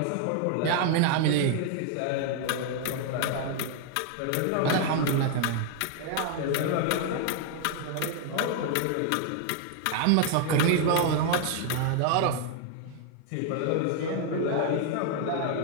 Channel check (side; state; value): both; different; correlation 0.00